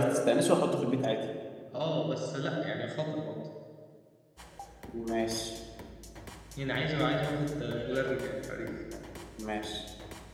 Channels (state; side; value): identical; both; correlation 1.00